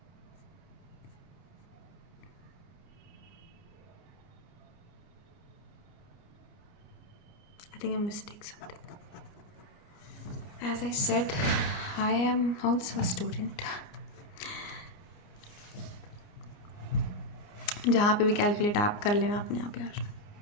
I think I mistake something. As I said, I am also a student. जहाँ पे भी कैलकुलेट आप कर लेना अपने आप यार,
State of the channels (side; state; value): right; late; 29 ms